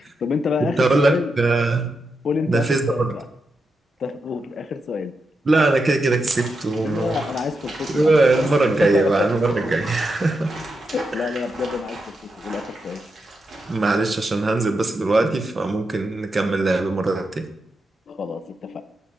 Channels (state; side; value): normal; both; correlation 0.86